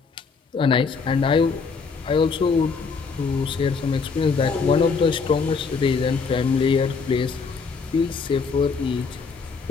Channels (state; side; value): quieter; right; 5.0 dB